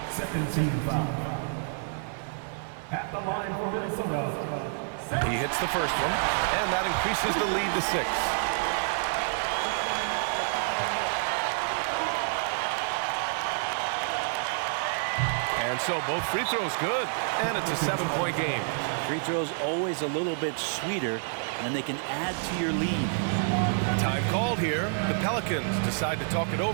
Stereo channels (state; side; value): silent; left; 59 dB below the other